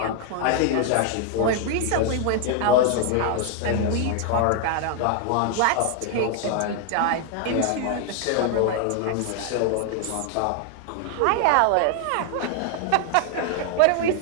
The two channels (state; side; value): different; both; correlation 0.00